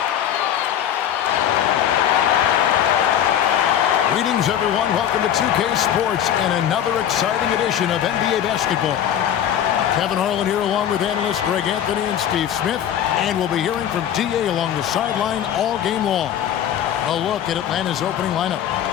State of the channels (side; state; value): right; quieter; 10.1 dB